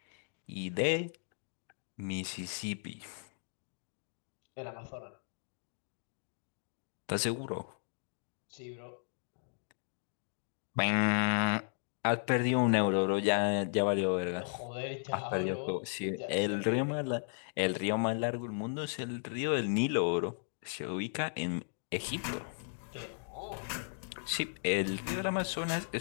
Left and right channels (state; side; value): silent; right; digital silence